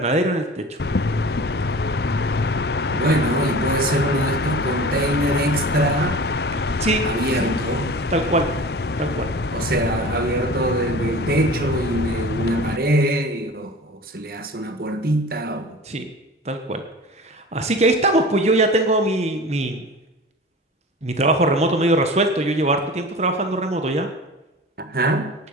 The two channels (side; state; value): both; normal; correlation 0.38